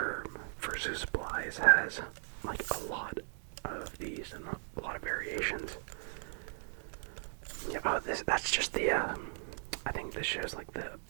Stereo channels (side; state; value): left; silent; digital silence